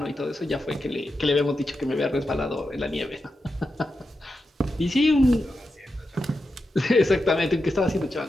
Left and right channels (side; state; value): both; normal; correlation 0.89